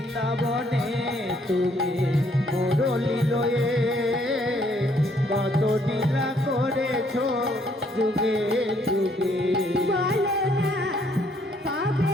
তুমি মুরলী লয়ে কত লীলা করেছ যুগে যুগে বলো না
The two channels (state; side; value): normal; both; correlation 0.67